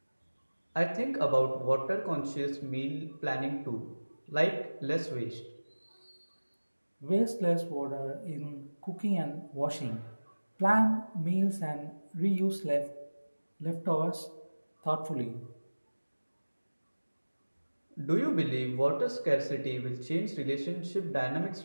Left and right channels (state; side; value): inverted; both; correlation -1.00